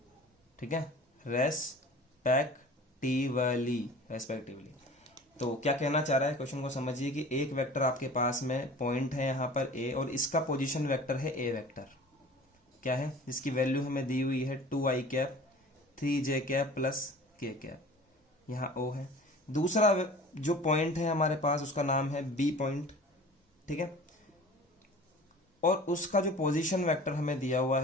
ठीक है, रेस्पेक्टिवली। तो क्या कहना चाह रहा है, क्वेश्चन को समझिए कि एक वेक्टर आपके पास में पॉइंट है यहाँ पर ए, और इसका पोजीशन वेक्टर है ए वेक्टर, क्या है, जिसकी वैल्यू हमें दी हुई है 2i cap 3j cap plus k cap, यहाँ ओ है। दूसरा जो पॉइंट है हमारे पास उसका नाम है बी पॉइंट, ठीक है, और उसका जो पोजीशन वेक्टर हमें दिया हुआ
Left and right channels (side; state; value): both; normal; correlation 0.43